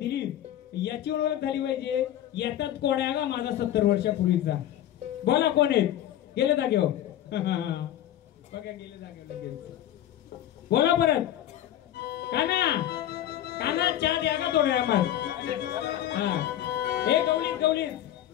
याची ओळख झाली पाहिजे येतात कोण आहे का माझा 70 वर्षापूर्वीचा बोला कोण आहेत गेले जागेवर बघा गेले जागेवर बोला परत काना काना चहा द्या का थोड्या मग हे गवळीत गवळीत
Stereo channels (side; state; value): right; quieter; 12.1 dB